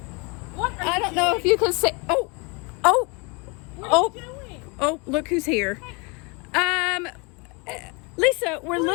What are I don't know if you can see. Oh, look who's here. Lisa, we're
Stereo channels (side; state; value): right; quieter; 30.5 dB